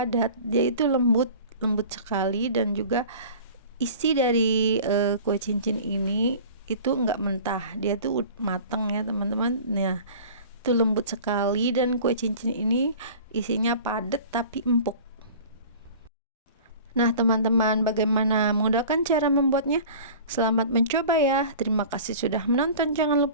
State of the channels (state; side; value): inverted; both; correlation -0.41